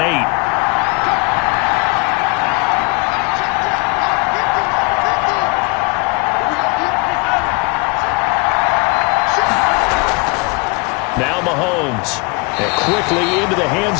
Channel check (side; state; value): right; quieter; 30.0 dB